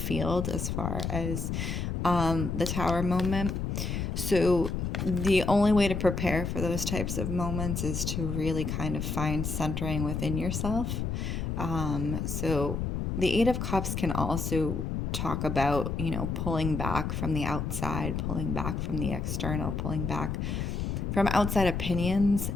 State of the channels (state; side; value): noise; left; rumble, 2 dB below the sound